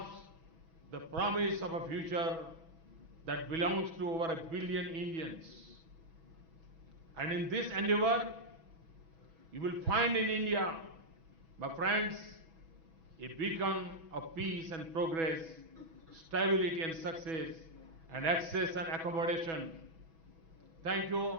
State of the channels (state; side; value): late; left; 6.1 ms